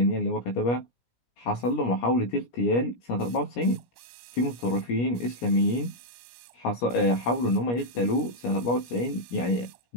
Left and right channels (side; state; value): right; late; 17 ms